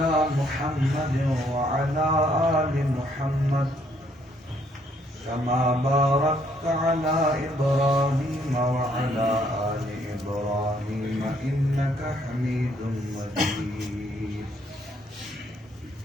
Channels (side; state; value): both; normal; correlation 0.68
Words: محمد وعلى آل محمد كما باركت على إبراهيم وعلى آل إبراهيم إنك حميد مجيد.